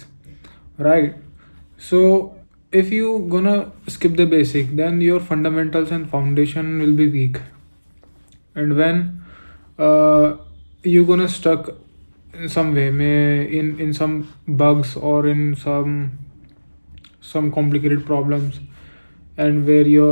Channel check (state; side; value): inverted; both; correlation -1.00